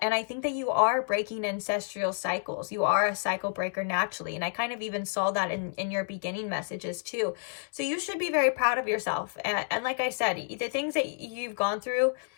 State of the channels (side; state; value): right; silent; digital silence